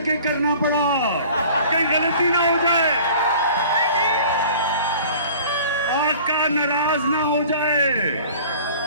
करना पड़ा, कहीं गलती ना हो जाए, आका नाराज ना हो जाए।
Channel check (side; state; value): both; inverted; correlation -0.46